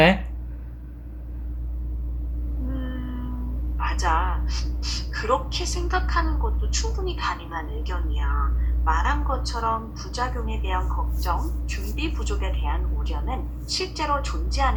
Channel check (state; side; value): identical; both; correlation 1.00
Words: 맞아. 그렇게 생각하는 것도 충분히 가능한 의견이야. 말한 것처럼 부작용에 대한 걱정, 준비 부족에 대한 우려는 실제로